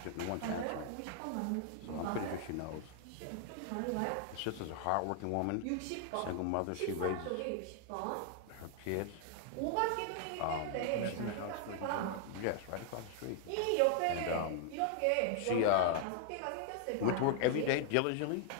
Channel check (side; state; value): both; different; correlation 0.00